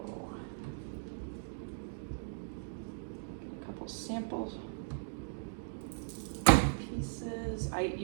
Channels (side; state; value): left; silent; digital silence